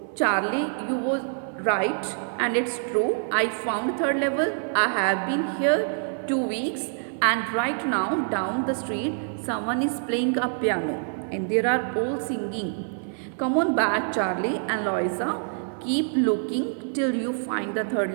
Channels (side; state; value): left; silent; 58 dB below the other